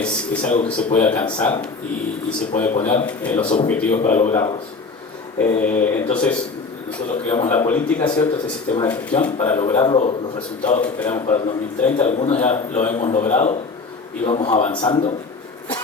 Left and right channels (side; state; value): right; quieter; 4.3 dB